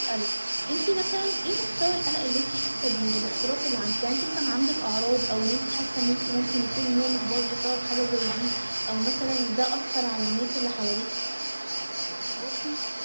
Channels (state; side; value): inverted; both; correlation -1.00